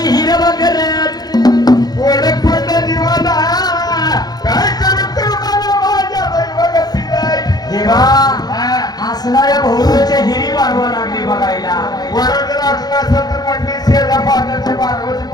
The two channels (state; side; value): late; right; 0.19 ms